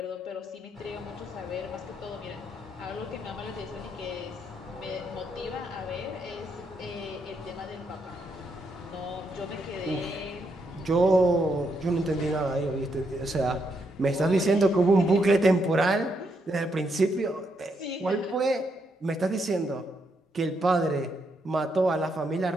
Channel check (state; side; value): normal; both; correlation 0.78